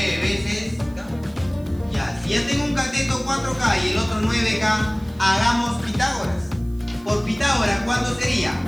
veces K. Ya, si ya tengo un cateto 4K y el otro 9K, hagamos Pitágoras. Por Pitágoras, ¿cuánto sería?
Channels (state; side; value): noise; right; hiss, 27 dB below the sound